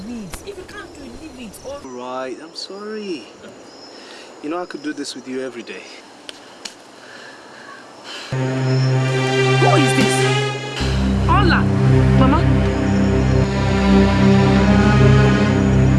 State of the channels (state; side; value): identical; both; correlation 1.00